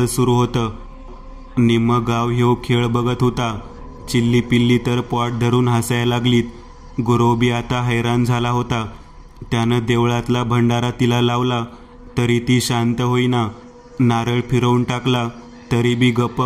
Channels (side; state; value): both; identical; correlation 1.00